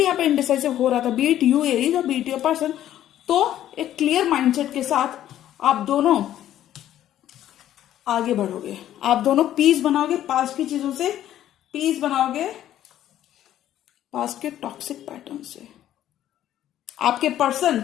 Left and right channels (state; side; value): quieter; right; 12.0 dB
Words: यहाँ पे इनडिसाइसिव हो रहा था, बीट यू एरीज और बीट योर पर्सन, तो एक क्लियर माइंडसेट के साथ आप दोनों आगे बढ़ोगे, आप दोनों पीस बनाओगे, पास्ट की चीजों से पीस बनाओगे, पास्ट के टॉक्सिक पैटर्न से। आपके पर्सन